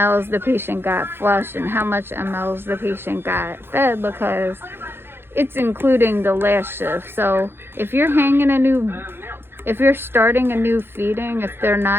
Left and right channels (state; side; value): late; left; 0.11 ms